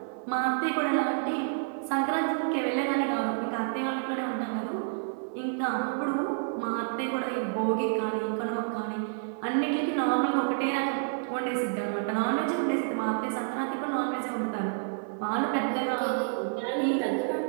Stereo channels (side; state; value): left; silent; 58 dB below the other